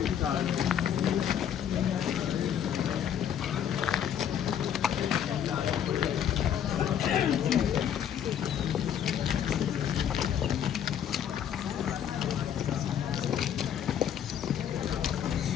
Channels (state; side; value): quieter; right; 9.3 dB